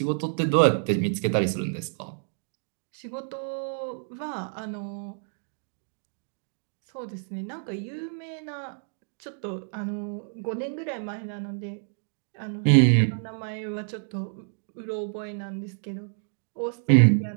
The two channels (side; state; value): left; silent; digital silence